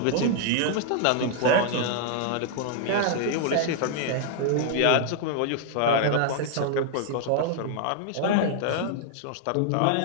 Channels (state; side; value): different; both; correlation -0.01